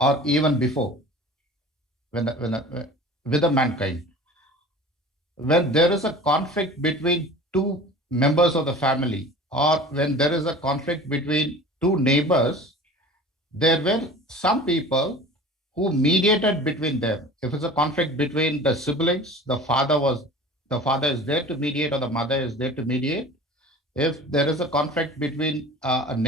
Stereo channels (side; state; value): both; normal; correlation 0.40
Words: even before, with the mankind. When there is a conflict between two members of the family, or when there is a conflict between two neighbors, there were some people who mediated between them. If it's a conflict between the siblings, the father is there to mediate, or the mother is there to mediate. If there is a conflict between